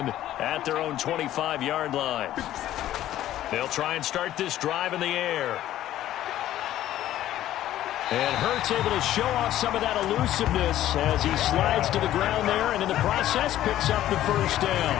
at their own 25-yard line. They'll try and start this drive in the air. And Hurts able to show off some of that elusiveness as he slides to the ground there, and in the process picks up the 1st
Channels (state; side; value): quieter; right; 13.1 dB